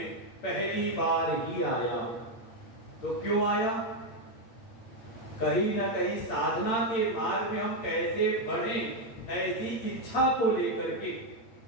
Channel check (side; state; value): right; late; 8.7 ms